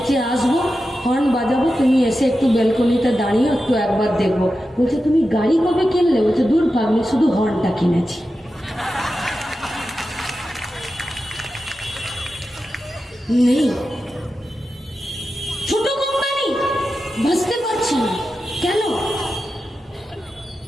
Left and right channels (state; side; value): normal; both; correlation 0.91